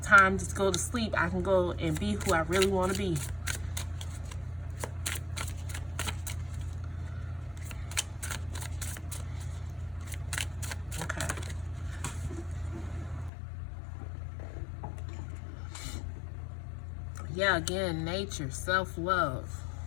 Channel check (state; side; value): drops out; right; at 13.3 s